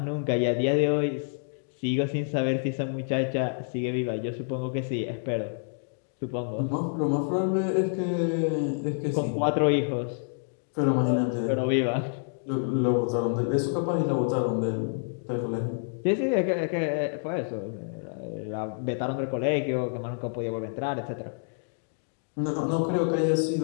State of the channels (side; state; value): right; silent; digital silence